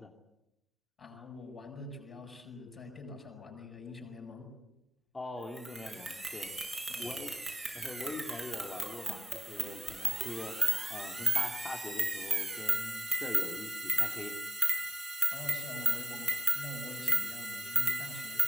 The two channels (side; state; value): both; normal; correlation 0.87